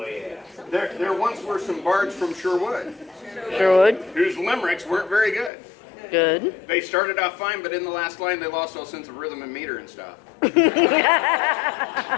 yeah. There once were some bards from Sherwood Sherwood. whose limericks weren't very good. Good. They started off fine, but in the last line they lost all sense of rhythm and meter and stuff.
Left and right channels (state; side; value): drops out; right; at 5.5 s